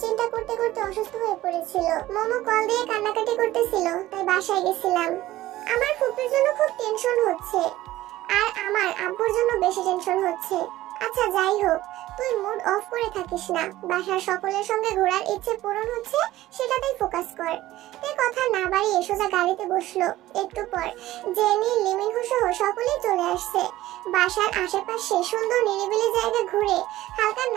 করতে করতে অসুস্থ হয়ে পড়েছিল। মোমো কল দিয়ে কান্নাকাটি করতেছিল, তাই বাসায় গেছিলাম। আমার ফুপির জন্য খুব টেনশন হচ্ছে, আর আমার আব্বুর জন্য বেশি টেনশন হচ্ছে। আচ্ছা যাই হোক, তুই মুড অফ করে থাকিস না। বাসার সকলের সঙ্গে ঘোরার ইচ্ছে পূরণ হচ্ছে, সেটাতেই ফোকাস কর। এই কথা না বাড়িয়ে সোজা গাড়িতে বসলো। একটু পর জেনি, লিমিনহু সহ সকলেই চলে আসছে। বাসার আশেপাশে সুন্দর নিরিবিলি জায়গা ঘুরে হালকা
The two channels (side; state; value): left; quieter; 15.7 dB